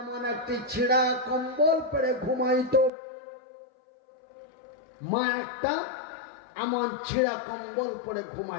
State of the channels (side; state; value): right; drops out; at 2.9 s